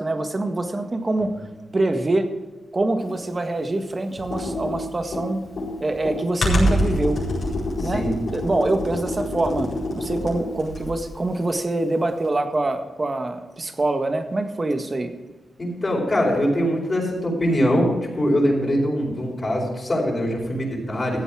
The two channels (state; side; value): normal; both; correlation 0.90